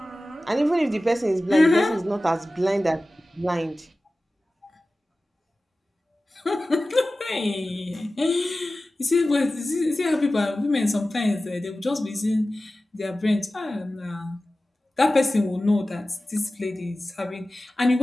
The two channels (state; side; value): normal; both; correlation 0.96